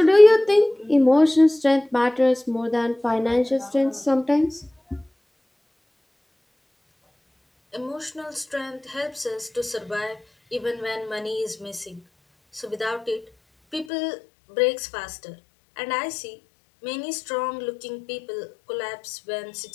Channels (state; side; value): drops out; right; at 13.9 s